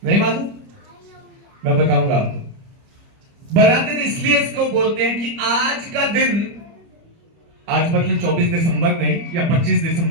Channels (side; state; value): left; late; 30 ms